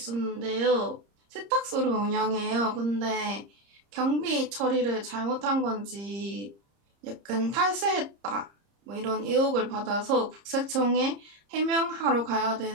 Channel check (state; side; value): late; left; 30 ms